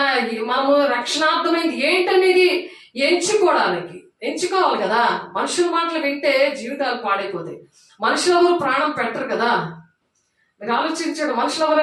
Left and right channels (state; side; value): identical; both; correlation 1.00